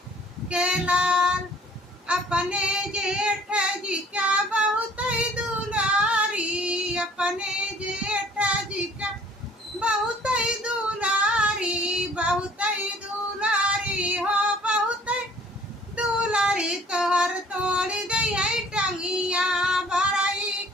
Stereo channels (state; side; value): normal; both; correlation 0.55